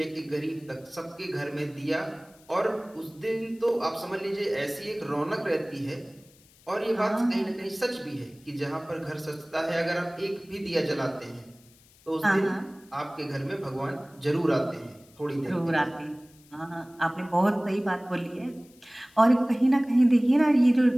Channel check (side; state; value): left; noise; hiss, 28 dB below the sound